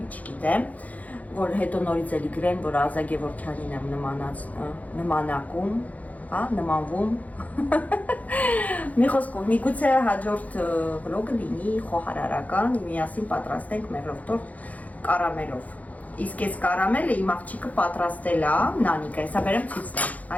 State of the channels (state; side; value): late; right; 0.073 ms